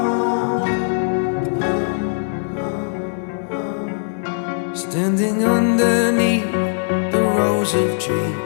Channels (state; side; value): silent; right; 66 dB below the other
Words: Standing underneath the rows of